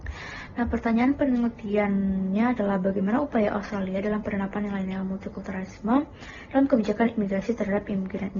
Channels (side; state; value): both; identical; correlation 1.00